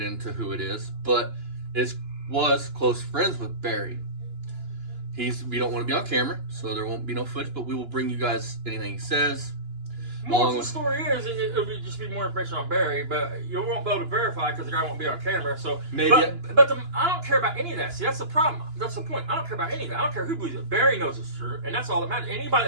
into who it is, but was close friends with Barry. We don't want to be on camera, so there won't be no footage, but we will bring you guys anything he says. More of the story is, it'll just be more information on Barry, but you won't be able to verify because the guy won't be on camera. So Maybe. But I don't care about any of that. See, that's the problem. That's the point. I don't care about any of that. I don't care who believes it. Barry knows it's true, and that's all that matters. Anybody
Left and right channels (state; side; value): late; left; 2.9 ms